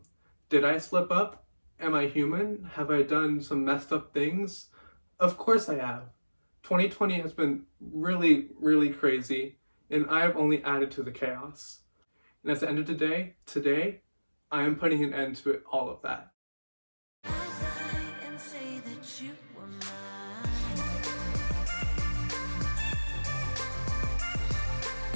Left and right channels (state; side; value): inverted; both; correlation -1.00